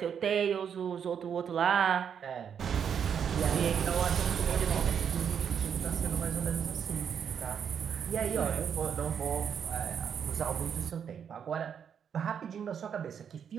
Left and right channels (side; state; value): left; quieter; 7.8 dB